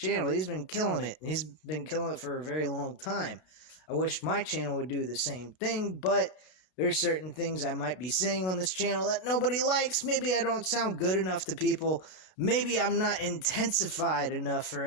He's been killing it. He's been killing it for a very long time. I wish my channel would do the same thing, but there's certain things I might be saying on this channel that nobody likes. Maybe I don't sound good enough to people. Maybe I'm not intensified enough for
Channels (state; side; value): late; right; 32 ms